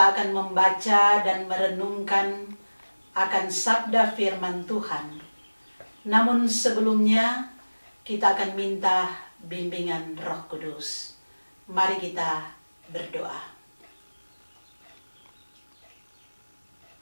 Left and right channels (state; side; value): inverted; both; correlation -1.00